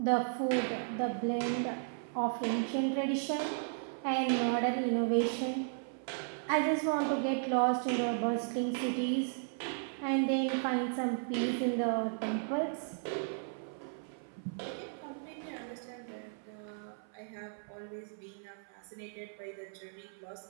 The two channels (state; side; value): silent; left; 54 dB below the other